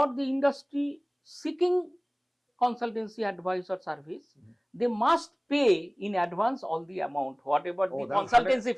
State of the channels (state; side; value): identical; both; correlation 1.00